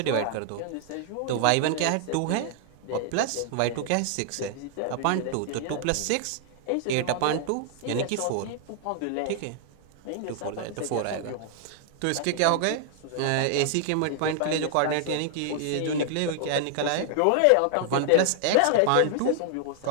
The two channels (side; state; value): both; different; correlation -0.01